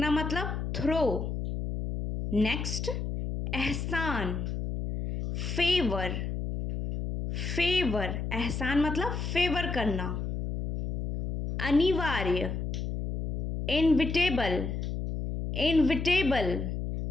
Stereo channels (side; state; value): left; noise; hum, 3 dB below the sound